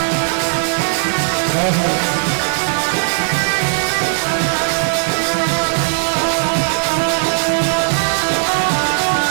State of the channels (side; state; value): left; silent; 58 dB below the other